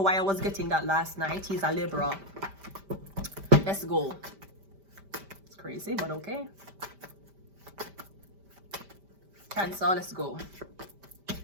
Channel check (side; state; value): left; late; 5.1 ms